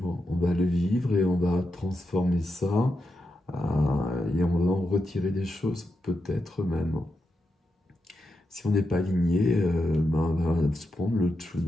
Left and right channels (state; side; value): normal; both; correlation 0.87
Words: On va le vivre et on va transformer ça et on va en retirer des choses, peut-être même. Si on n'est pas aligné, ben, on va se prendre le